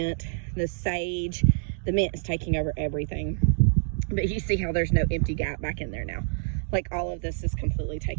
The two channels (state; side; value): silent; left; 57 dB below the other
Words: the sage. The mint is taking over everything, but you see how there's no empty gap back in there now. Like, all of this is completely